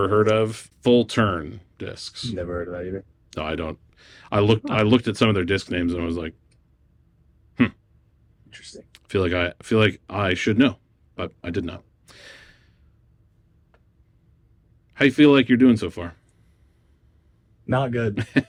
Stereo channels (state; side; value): identical; both; correlation 1.00